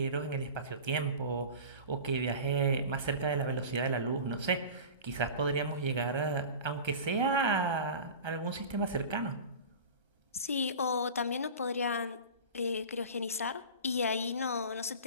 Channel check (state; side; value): inverted; both; correlation -0.35